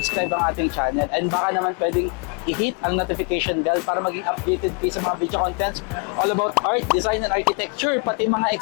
ang ating channel. And baka naman pwedeng i-hit ang notification bell para maging updated kayo sa mga video contents all about art, design, and architecture. Pati mga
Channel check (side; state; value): right; quieter; 34.5 dB